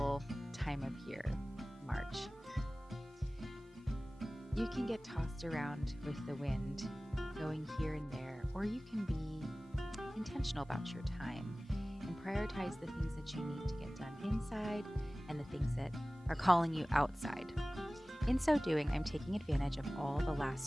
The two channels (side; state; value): both; normal; correlation 0.98